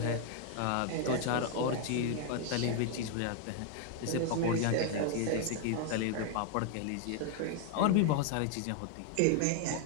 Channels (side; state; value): both; different; correlation 0.00